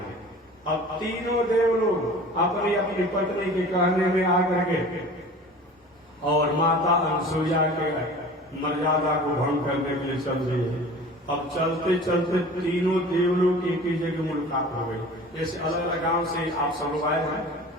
अब तीनों देव लोग अपनी अपनी पत्नी के कहने में आकर के और माता अनसुईया के मर्यादा को भंग करने के लिए चल रही है। अब चलते चलते तीनों देवलोग एक ही जगह मुलाकात हो गई। जैसे अलग अलग गांव से आप सब लोग आए हैं,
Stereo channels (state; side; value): normal; both; correlation 0.41